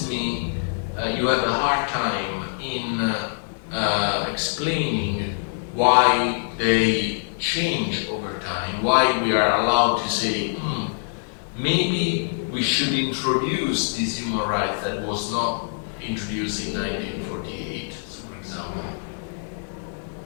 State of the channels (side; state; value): right; silent; 61 dB below the other